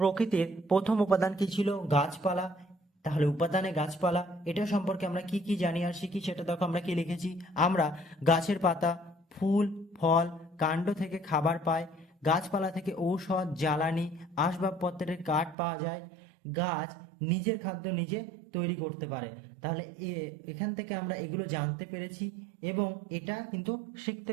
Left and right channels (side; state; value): left; drops out; at 15.6 s